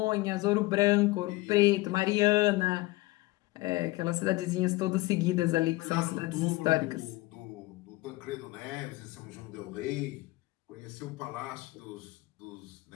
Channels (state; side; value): quieter; right; 20.3 dB